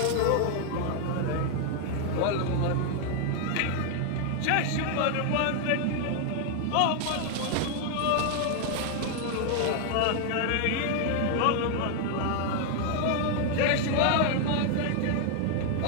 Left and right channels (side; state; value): both; different; correlation 0.00